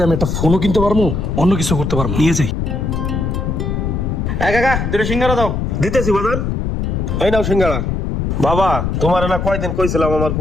আমি একটা ফোনও কিনতে পারবো, অন্য কিছু করতে পারবো। নিয়ে যাই। কাকা দুটো সিঙ্গারা দাও। দিতেছি বাজান, এই নাও সিঙ্গারা। বাবা তোমার না কয়দিন কইছিলাম আমার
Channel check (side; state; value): left; noise; rumble, 1 dB below the sound